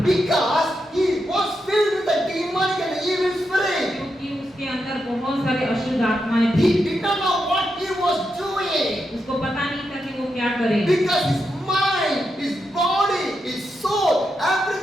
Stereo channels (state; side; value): normal; both; correlation 0.85